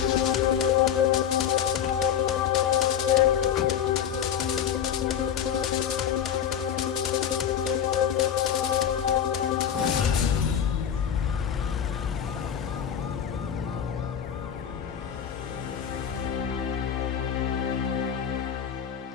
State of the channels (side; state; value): right; quieter; 8.9 dB